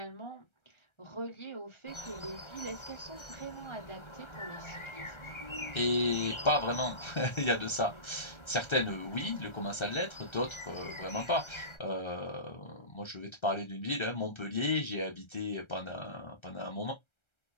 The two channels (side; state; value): right; late; 1.3 ms